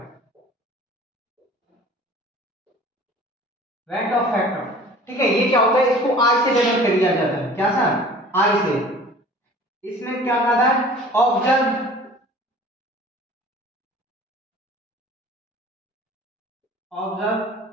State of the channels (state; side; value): normal; both; correlation 0.46